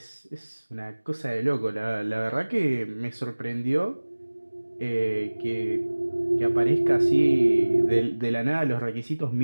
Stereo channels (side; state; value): both; inverted; correlation -1.00